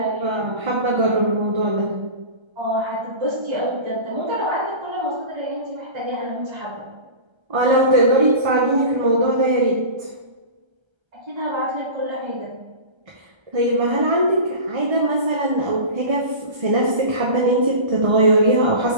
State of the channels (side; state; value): left; late; 1.3 ms